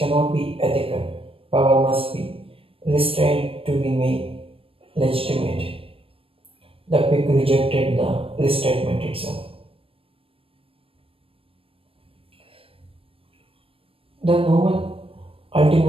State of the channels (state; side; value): late; left; 0.27 ms